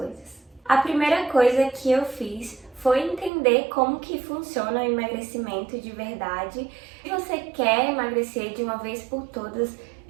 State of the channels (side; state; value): left; drops out; at 3.3 s